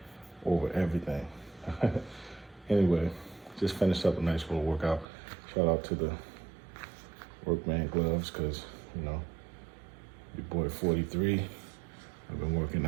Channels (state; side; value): drops out; left; at 5.1 s